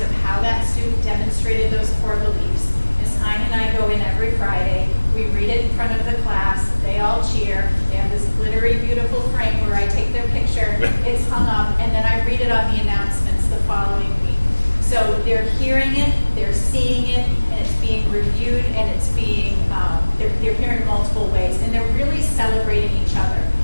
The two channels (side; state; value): both; inverted; correlation -1.00